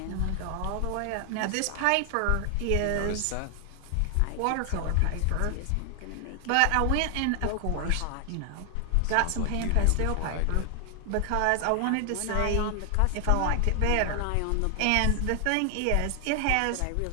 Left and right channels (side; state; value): both; different; correlation 0.00